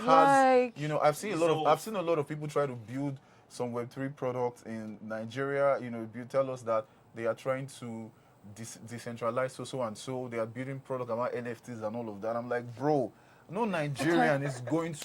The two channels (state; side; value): identical; both; correlation 1.00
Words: I've seen a lot of people try to build some Web3 products in Nigeria. You tell us that they are trying to decentralize so and so. They are building products about NFTs and all of that. I'm like, bro, no Nigerian is going